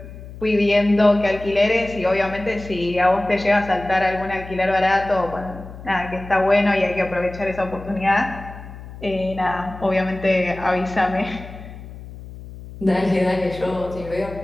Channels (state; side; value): noise; left; hum, 14 dB below the sound